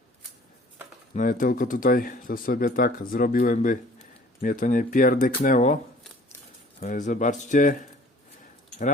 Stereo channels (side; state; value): both; normal; correlation 0.51